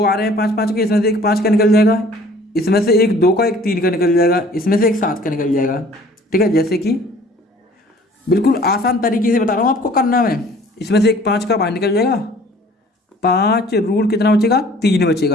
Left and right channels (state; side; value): normal; both; correlation 0.52